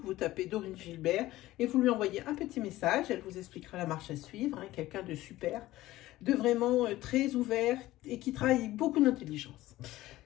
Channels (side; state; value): right; quieter; 16.4 dB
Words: Vous tapez Dorine Gilbert et vous lui envoyez un petit message. Elle vous expliquera la marche à suivre. Hein, quelqu'un de super, de vraiment très ouvert et qui travaille beaucoup d'intelligence.